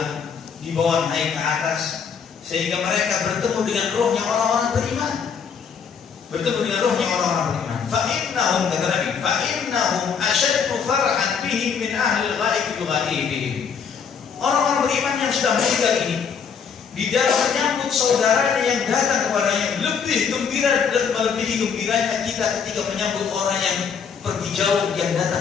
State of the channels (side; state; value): right; quieter; 6.6 dB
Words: dibawa naik ke atas, sehingga mereka bertemu dengan rohnya orang-orang beriman. Bertemu dengan rohnya orang-orang beriman. Fa'innahum, kata Nabi, fa'innahum asyaddu farhan bihim min ahli al-ghaib bighaibihim. Orang-orang beriman yang sudah meninggal ini, di dalam menyambut saudaranya yang datang kepadanya, lebih gembira dan melebihi gembiranya kita ketika menyambut orang yang pergi jauh yang